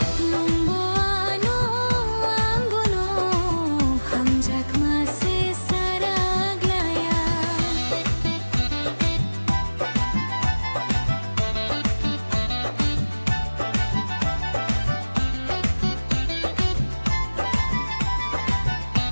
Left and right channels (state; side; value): inverted; both; correlation -1.00